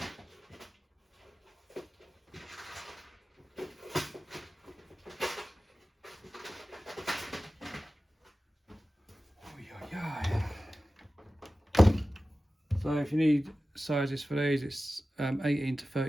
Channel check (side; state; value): both; normal; correlation 0.95